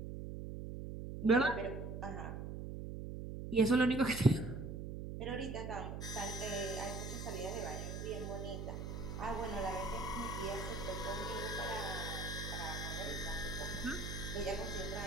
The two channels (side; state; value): right; noise; hum, 6 dB below the sound